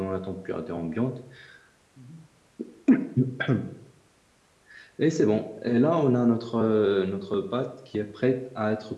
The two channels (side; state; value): both; identical; correlation 1.00